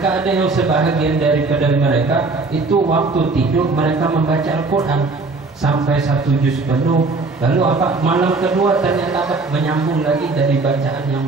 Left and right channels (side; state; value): left; quieter; 3.7 dB